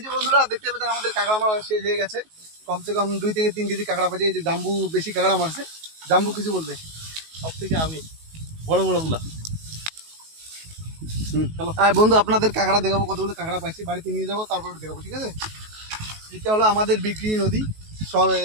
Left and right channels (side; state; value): left; late; 19 ms